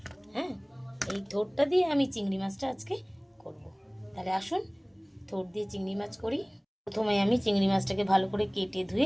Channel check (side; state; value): both; identical; correlation 1.00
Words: হ্যাঁ, এই থোড়টা দিয়ে আমি চিংড়ি মাছটা আজকে করব। তাহলে আসুন থোড় দিয়ে চিংড়ি মাছ করি। প্রথমে আমি চিংড়ি মাছটাকে ভালো করে কেটে